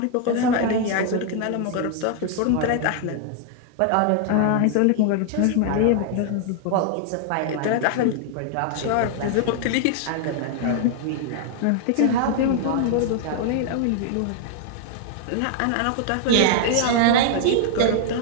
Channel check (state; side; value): different; both; correlation 0.00